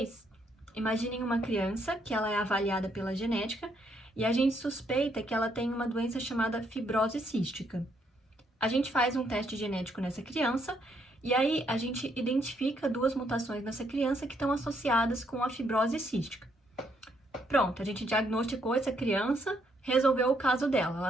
imaginem uma criança que ela é avaliada pela genética e a gente suspeita que ela tem uma doença chamada fibrose cística. A gente faz um teste genético nessa criança e aí a gente identifica duas mutações nessa criança que estão associadas com a fibrose cística. Pronto, a gente diagnosticou essa criança, resolveu o caso dela,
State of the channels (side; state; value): both; normal; correlation 0.73